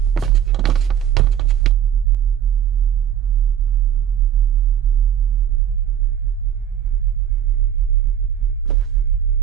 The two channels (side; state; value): left; quieter; 9.7 dB